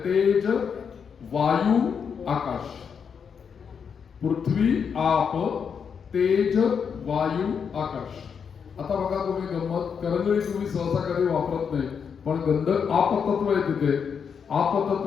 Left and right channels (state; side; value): quieter; right; 6.7 dB